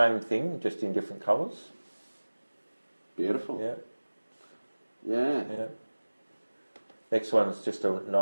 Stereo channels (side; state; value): both; inverted; correlation -1.00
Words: thing, just in different colours. Beautiful. Yeah. Next one is just a